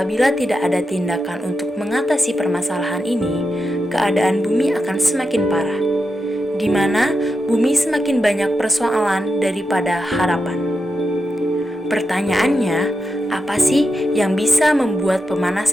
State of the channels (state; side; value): normal; both; correlation 0.88